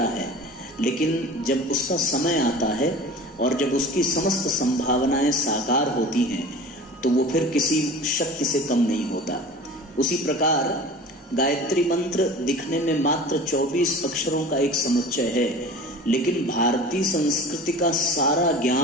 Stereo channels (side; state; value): both; normal; correlation 0.39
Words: है लेकिन जब उसका समय आता है और जब उसकी समस्त संभावनाएं साकार होती हैं तो वो फिर किसी शक्ति से कम नहीं होता। उसी प्रकार गायत्री मंत्र दिखने में मात्र 24 अक्षरों का एक समुच्चय है, लेकिन भारतीय संस्कृति का सारा